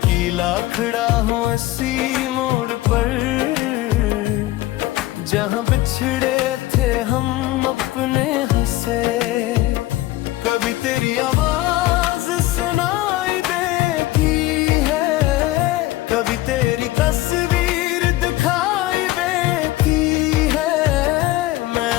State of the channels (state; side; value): quieter; right; 17.0 dB